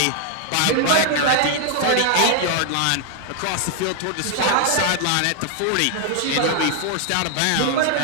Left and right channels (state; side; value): different; both; correlation 0.00